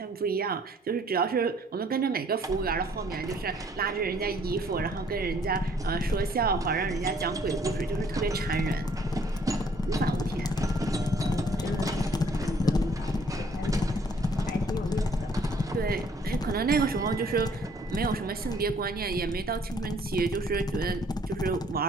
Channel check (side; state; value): both; normal; correlation 0.61